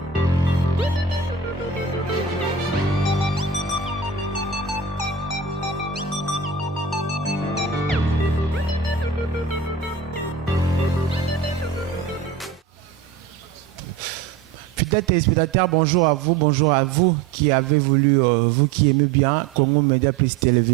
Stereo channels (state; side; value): quieter; left; 5.5 dB